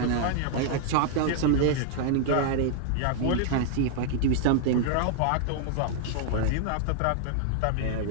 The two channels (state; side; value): different; both; correlation -0.01